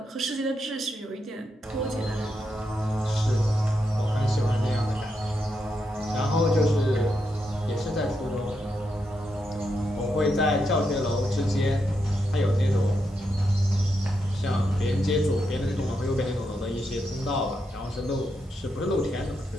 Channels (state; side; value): normal; both; correlation 0.83